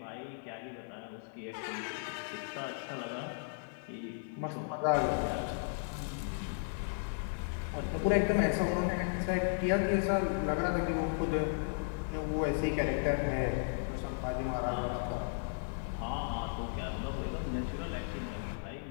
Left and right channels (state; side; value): silent; right; 54 dB below the other